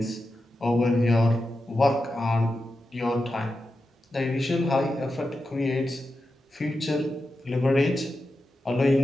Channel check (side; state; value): both; normal; correlation 0.90